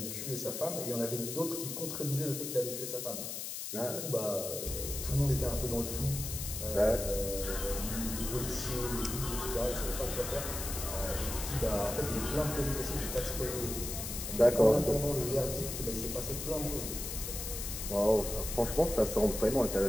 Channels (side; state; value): left; noise; hiss, 6 dB below the sound